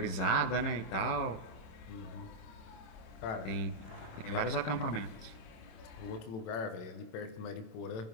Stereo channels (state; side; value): late; right; 26 ms